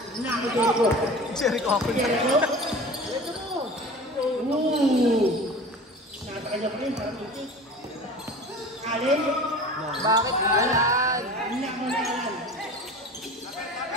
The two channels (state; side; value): normal; both; correlation 0.37